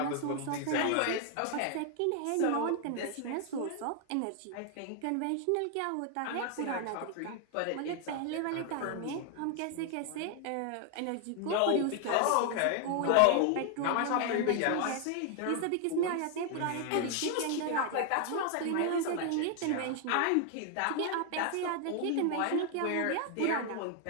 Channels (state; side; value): different; both; correlation 0.00